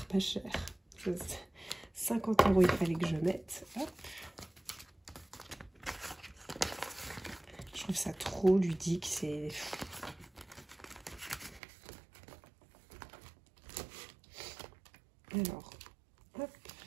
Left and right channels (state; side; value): drops out; left; at 11.6 s